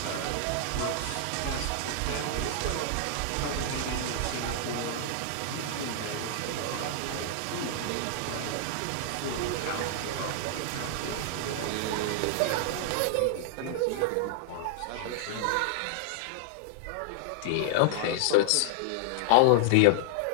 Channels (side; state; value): both; different; correlation -0.01